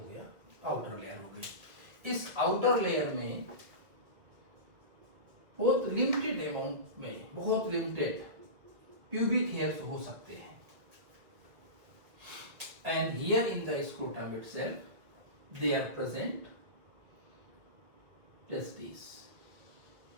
गया, आउटर लेयर हो गई। इस आउटर लेयर में बहुत लिमिटेड अमाउंट में, बहुत लिमिटेड प्यूबिक हेयर्स हो सकते हैं। And here in the scrotum itself they are present testis.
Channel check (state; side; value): late; left; 2.0 ms